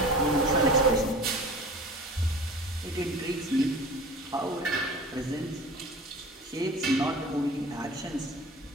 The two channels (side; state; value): both; normal; correlation 0.40